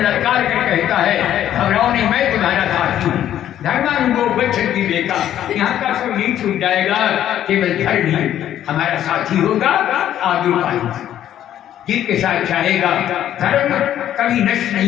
ललकार कर कहता है घबराओ नहीं मैं तुम्हारा साथ हूँ। धर्मानुगो गच्छति देखा, यहाँ का सब नहीं छूट जाएगा, केवल धर्म ही हमारा साथी होगा, आगे पाएगा जीव के साथ चाहेगा। धर्म कभी नष्ट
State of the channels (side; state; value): right; quieter; 11.3 dB